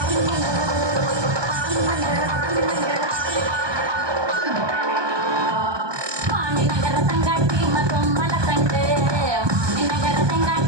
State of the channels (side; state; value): left; late; 1.2 ms